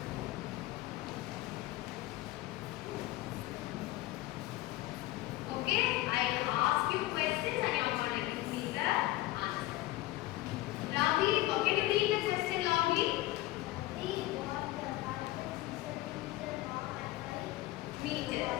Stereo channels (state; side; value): quieter; right; 17.5 dB